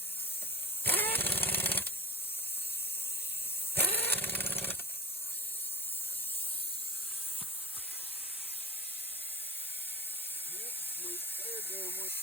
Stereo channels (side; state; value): both; normal; correlation 0.40